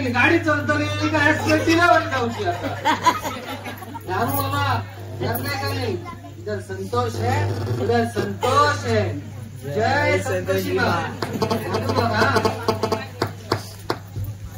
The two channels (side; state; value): both; identical; correlation 1.00